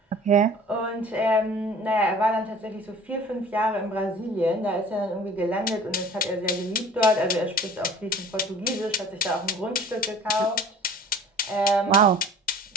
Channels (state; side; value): normal; both; correlation 0.46